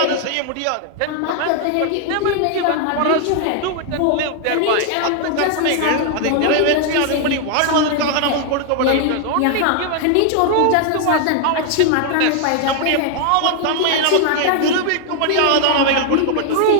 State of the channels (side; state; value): both; different; correlation 0.00